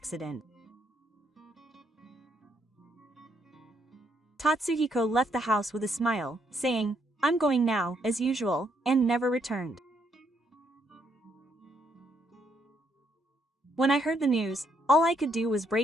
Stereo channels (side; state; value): both; normal; correlation 0.73